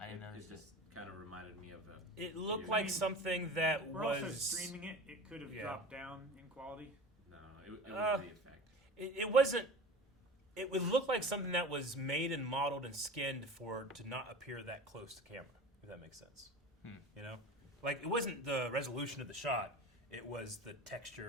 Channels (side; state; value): both; normal; correlation 0.35